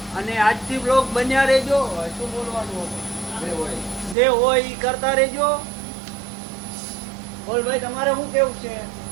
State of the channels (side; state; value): left; drops out; at 4.2 s